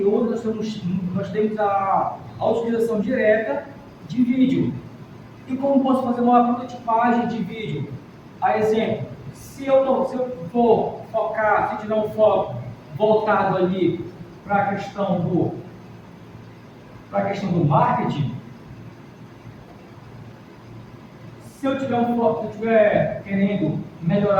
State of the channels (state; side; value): identical; both; correlation 1.00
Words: hoje nós temos a utilização direta de vídeo. E como posso fazer uma prototipagem de vídeo? A exemplo, se eu for focar, se tiver um foco voltado ali para a questão do marketing, se eu estiver querendo